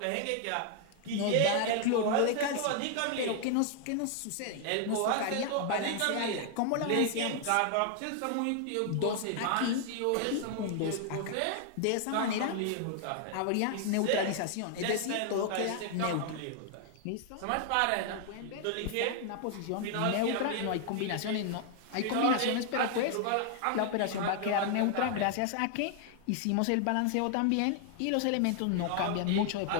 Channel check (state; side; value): different; both; correlation 0.00